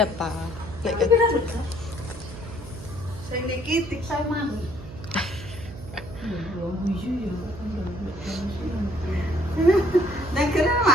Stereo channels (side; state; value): right; noise; hum, 13 dB below the sound